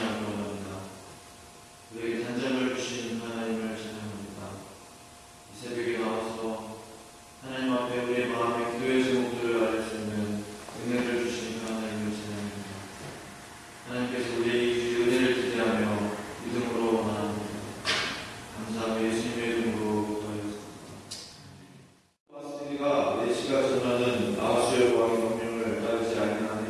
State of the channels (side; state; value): both; identical; correlation 1.00